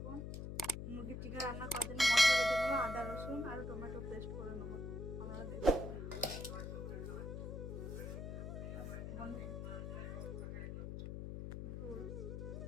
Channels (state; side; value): noise; left; hum, 6 dB below the sound